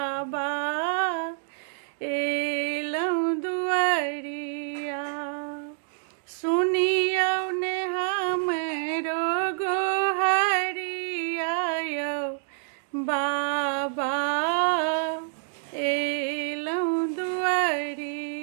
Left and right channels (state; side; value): silent; left; digital silence